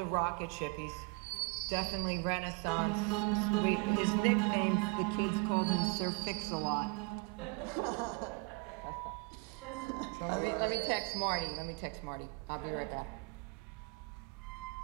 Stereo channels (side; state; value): left; quieter; 29.6 dB